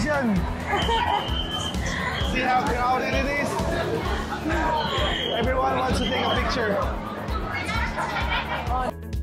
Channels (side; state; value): both; identical; correlation 1.00